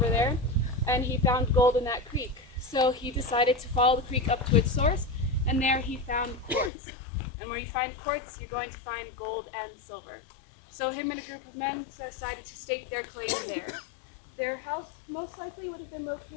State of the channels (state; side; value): drops out; right; at 6.7 s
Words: there, and he found gold in that creek. So he decided to follow the creek up to its source, and there he found quartz. And where you find quartz, you're going to find gold and silver. So him and a group of men decided to stake their claim there. Their house most likely would have been